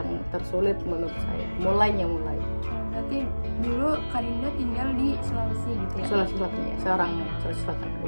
tersulit menurut saya. Mulai. Berarti dulu Kak Dinda tinggal di Sulawesi gitu ya? Sulawesi Selatan ya, seorang Sulawesi Selatan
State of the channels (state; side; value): inverted; both; correlation -1.00